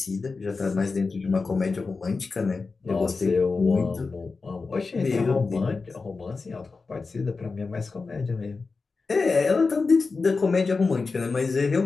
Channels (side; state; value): right; quieter; 4.2 dB